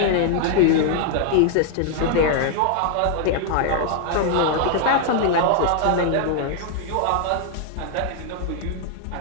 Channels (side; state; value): both; different; correlation 0.00